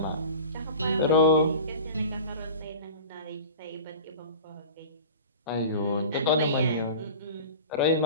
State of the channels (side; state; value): both; inverted; correlation -0.36